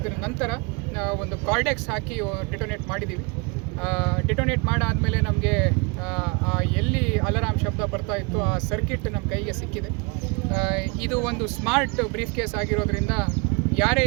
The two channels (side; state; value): left; quieter; 29.8 dB